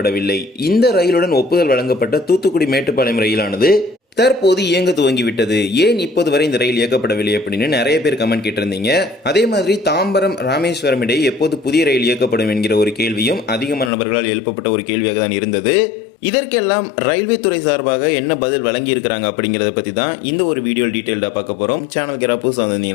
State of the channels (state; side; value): drops out; right; at 13.9 s